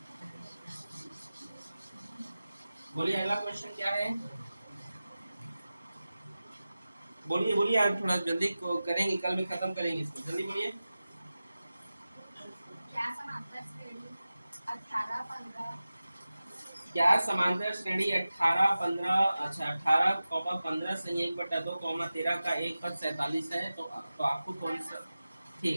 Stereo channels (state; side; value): inverted; both; correlation -0.95